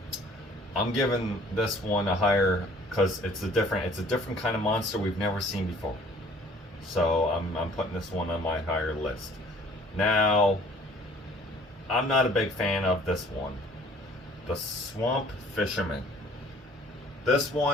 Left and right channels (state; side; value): normal; both; correlation 0.55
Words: I'm giving this one a higher, because it's a different kind of monster we've never seen before. So I'm putting this one on my higher list. Now, I'm not a big fan of this one. The Swamp Fisherman. This